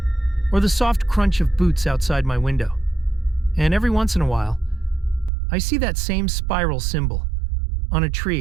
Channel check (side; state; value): left; drops out; at 5.3 s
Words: or the soft crunch of boots outside my window. And every once in a while, I see that same spiral symbol on a